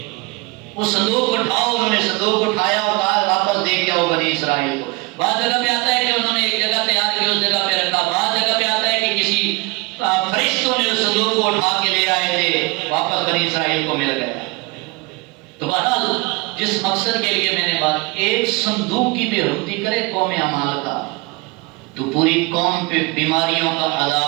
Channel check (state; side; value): quieter; left; 24.7 dB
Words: وہ صندوق اٹھاؤ، انہوں نے صندوق اٹھایا اور کہا واپس دے کے آؤ بنی اسرائیل کو۔ بعض جگہ پہ آتا ہے کہ انہوں نے ایک جگہ تیار کی، اس جگہ پہ رکھا، بعض جگہ پہ آتا ہے کہ کسی فرشتوں نے اس صندوق کو اٹھا کے لے آئے تھے، واپس بنی اسرائیل کو مل گیا۔ تو بہرحال جس مقصد کے لیے میں نے بات، ایک صندوق کی بے حرمتی کرے قوم عمالقہ تو پوری قوم پہ بیماریوں کا